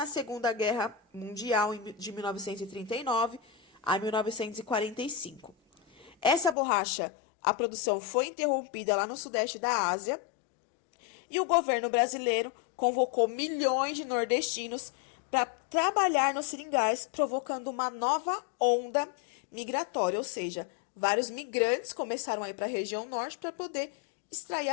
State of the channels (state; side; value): drops out; right; at 6.6 s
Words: Segunda Guerra Mundial, de 1939 a 1945. Essa borracha, a produção foi interrompida lá no sudeste da Ásia, e o governo brasileiro convocou milhões de nordestinos para trabalhar nos seringais, provocando uma nova onda migratória, ou seja, vários migrantes começaram a ir para a região norte para poder extrair